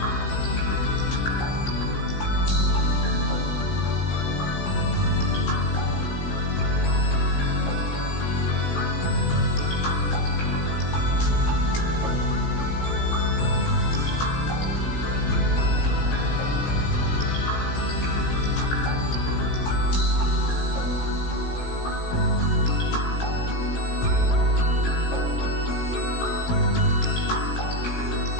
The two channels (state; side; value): late; right; 17 ms